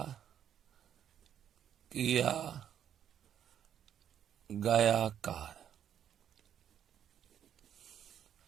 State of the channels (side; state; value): left; quieter; 9.6 dB